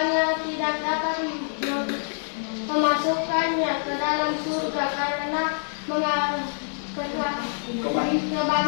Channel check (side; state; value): right; silent; 61 dB below the other